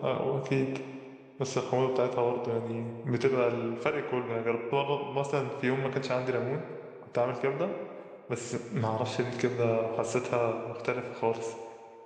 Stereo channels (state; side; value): identical; both; correlation 1.00